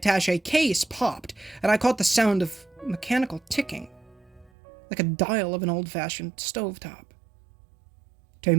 case popped, and I caught the sound of mechanical ticking, like a dial of an old-fashioned stovetop. 2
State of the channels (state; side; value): drops out; left; at 4.5 s